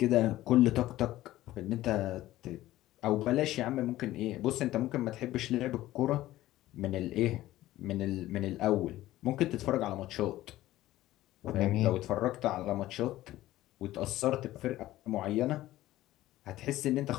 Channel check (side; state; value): right; quieter; 15.5 dB